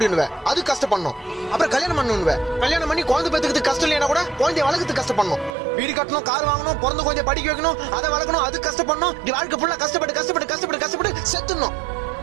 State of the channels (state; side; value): drops out; left; at 5.6 s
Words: அது கஷ்டப்படணும். அப்புறம் கல்யாணம் பண்ணணும், கல்யாணம் பண்ணி குழந்தை பெத்துக்கிறதுக்கு கஷ்டம் இல்லையா கூட குழந்தைய வளர்க்கறதுக்கு கஷ்டப்படணும். வீடு கட்டணும், கார் வாங்கணும், பிறந்த குழந்தைய படிக்க வைக்கணும், அதை வளர்க்கணும், அது கஷ்டப்படணும். இப்படி வாழ்க்கை ஃபுல்லா கஷ்டப்பட்டு கஷ்டப்பட்டு கஷ்டப்பட்டு கஷ்டப்பட்டு செத்துடணும்.